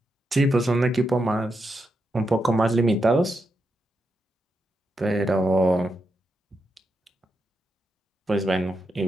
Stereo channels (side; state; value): both; normal; correlation 0.85